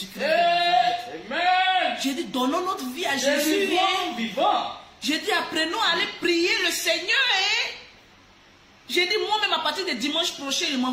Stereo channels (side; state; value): both; identical; correlation 1.00